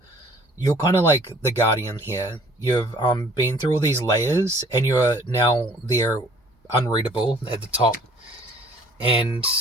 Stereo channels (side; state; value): both; normal; correlation 0.55